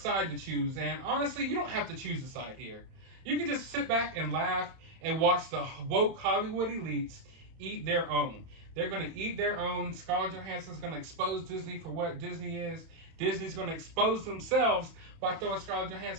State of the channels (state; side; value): late; left; 31 ms